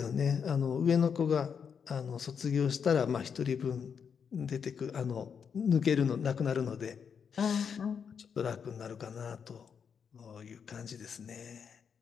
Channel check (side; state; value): right; quieter; 6.8 dB